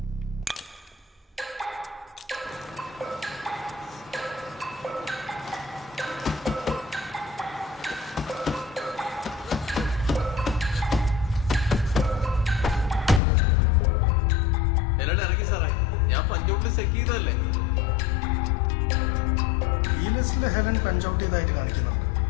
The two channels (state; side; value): drops out; right; at 13.2 s